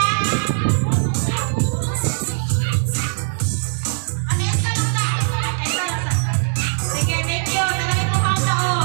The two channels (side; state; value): left; silent; digital silence